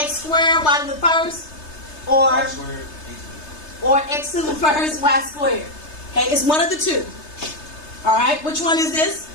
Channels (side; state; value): right; late; 3.3 ms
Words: squared, y to the first, or x to the first, y squared. Okay, it's one of the two. All right, which one is this?